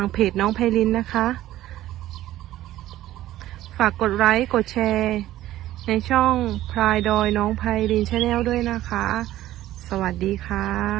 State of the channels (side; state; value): left; quieter; 14.4 dB